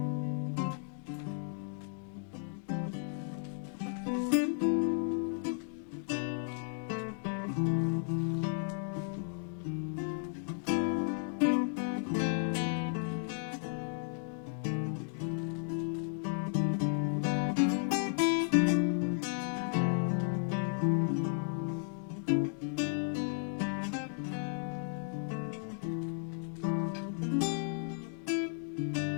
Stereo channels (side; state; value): right; silent; 55 dB below the other